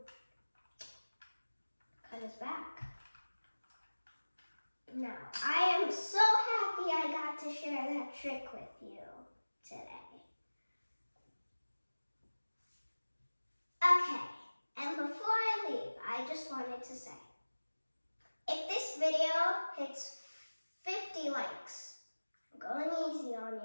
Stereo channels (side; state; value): both; inverted; correlation -1.00